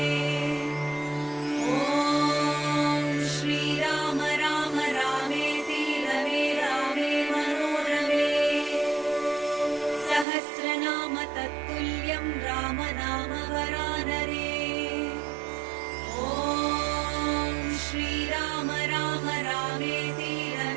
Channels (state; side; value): drops out; left; at 10.2 s